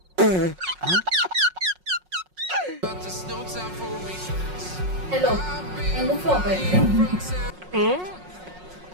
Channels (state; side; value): late; left; 5.5 ms